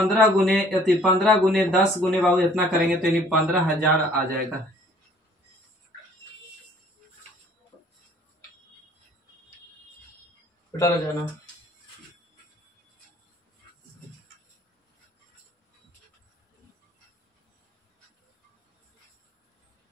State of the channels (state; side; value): normal; both; correlation 0.56